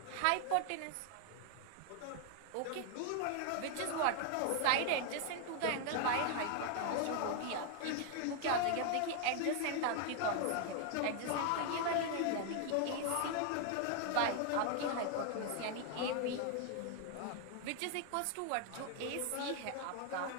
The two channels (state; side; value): different; both; correlation 0.00